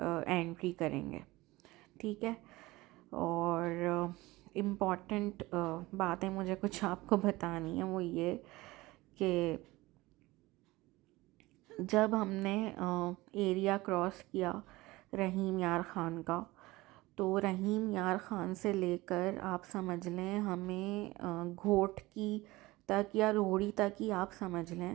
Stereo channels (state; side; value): quieter; left; 20.1 dB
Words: करेंगे। ठीक है। और इम्पॉर्टेंट बातें मुझे कुछ आपको बतानी है, वो ये कि जब हमने एरिया क्रॉस किया रहीम यार ख़ान का, तो रहीम यार ख़ान से लेकर आप समझ लें हमें घोट की तक या रोहड़ी तक ही आप समझ